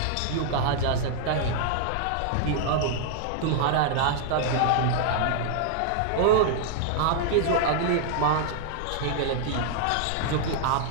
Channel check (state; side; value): different; both; correlation -0.01